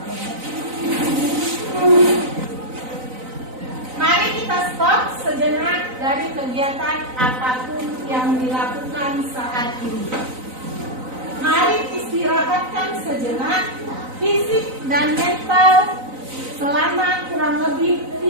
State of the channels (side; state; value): left; late; 3.9 ms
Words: Mari kita stop sejenak dari kegiatan apapun yang dilakukan saat ini. Mari istirahatkan sejenak fisik dan mental selama kurang lebih